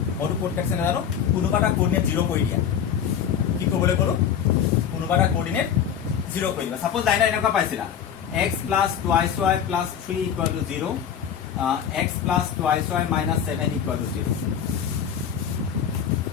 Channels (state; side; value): quieter; right; 8.5 dB